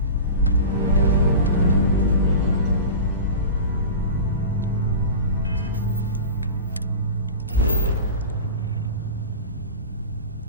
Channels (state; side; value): inverted; both; correlation -0.31